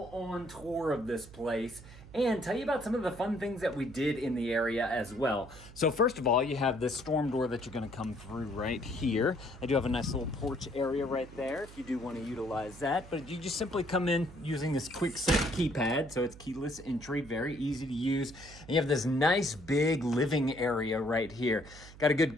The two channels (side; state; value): right; noise; hum, 18 dB below the sound